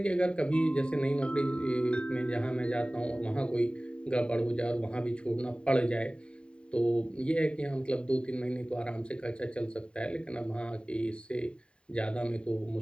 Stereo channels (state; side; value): late; right; 0.054 ms